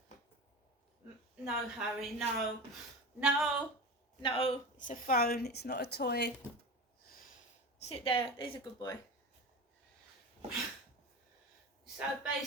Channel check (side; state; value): both; normal; correlation 0.28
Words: No, Harry, no. No, it's a phone, it's not a toy. Sit there, there's a good boy. So